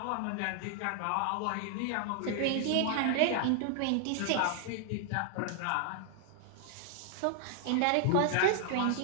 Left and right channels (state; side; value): different; both; correlation 0.00